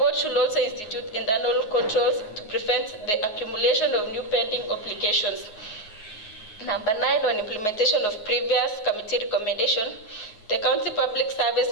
should also institute internal controls to prevent the accumulation of new pending obligations. Number 9, on implementation of previous committee recommendation. The County Public Service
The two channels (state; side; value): late; right; 9.5 ms